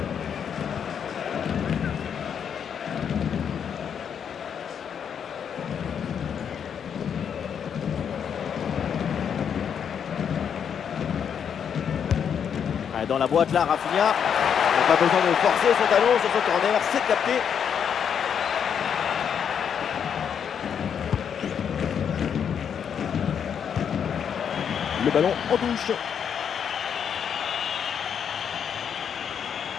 Dans la boîte là, Rafinha n'a pas besoin de forcer son talon sur son corner, c'est capté. Le ballon en touche.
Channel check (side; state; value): right; quieter; 7.8 dB